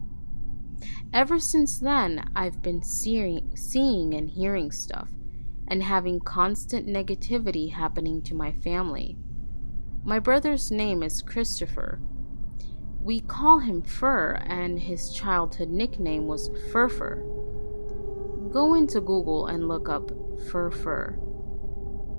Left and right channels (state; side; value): inverted; both; correlation -1.00